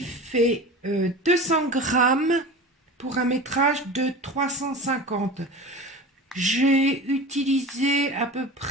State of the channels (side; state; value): both; normal; correlation 0.33